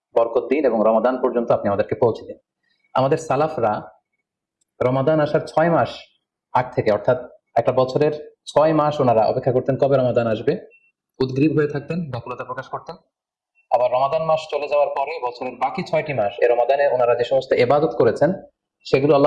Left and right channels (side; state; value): both; identical; correlation 1.00